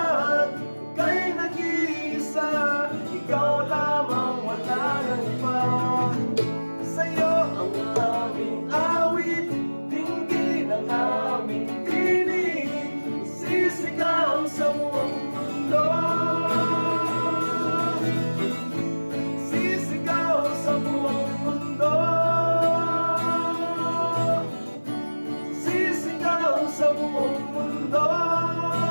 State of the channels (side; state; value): both; inverted; correlation -1.00